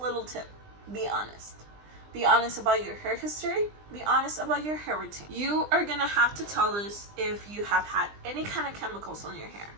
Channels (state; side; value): late; left; 20 ms